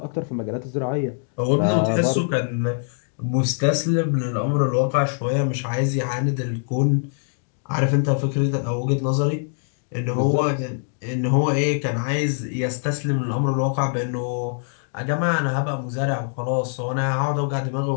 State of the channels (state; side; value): silent; right; 63 dB below the other